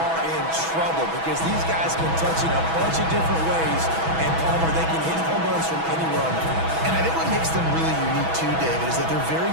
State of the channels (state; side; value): late; left; 6.1 ms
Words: in trouble because these guys can touch it a bunch of different ways, and Palmer, they can hit home runs from anywhere on the field. And I think what makes them really unique too, David, is that they're very